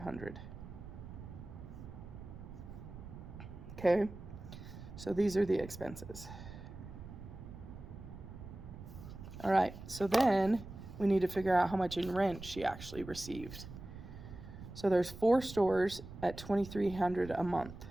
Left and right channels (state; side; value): noise; right; rumble, 13 dB below the sound